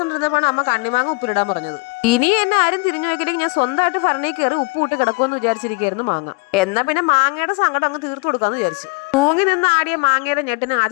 അമ്മ കണ്ണിമാങ്ങ ഉപ്പിലിടാൻ പറഞ്ഞത്. ഇനി എന്നെ ആരും തിരിഞ്ഞു നോക്കിയില്ലെങ്കിൽ ഞാൻ സ്വന്തമായിട്ട് ഭരണി കയറി ഉപ്പ് ഇട്ട് കിടക്കുമെന്ന് വിചാരിച്ചിരിക്കുകയായിരുന്നു മാങ്ങ. എന്നാ പിന്നെ മാങ്ങയുടെ സങ്കടം അങ്ങ് തീർത്തു കൊടുക്കാന്ന് വിചാരിച്ചു. തൂങ്ങി നിന്ന് ആടിയ മാങ്ങയുടെ ഞെട്ടിനെ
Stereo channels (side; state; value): right; quieter; 30.2 dB